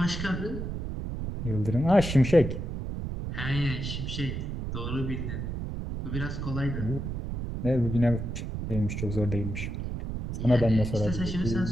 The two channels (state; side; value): noise; right; rumble, 4 dB below the sound